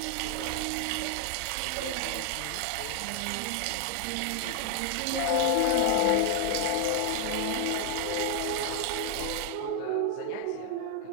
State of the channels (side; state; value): both; different; correlation 0.00